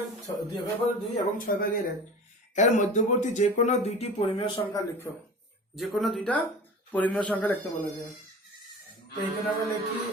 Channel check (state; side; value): normal; both; correlation 0.37